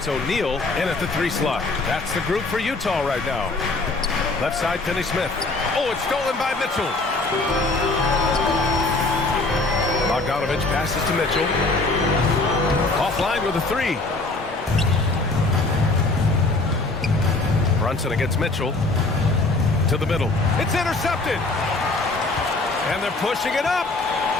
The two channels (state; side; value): quieter; right; 3.2 dB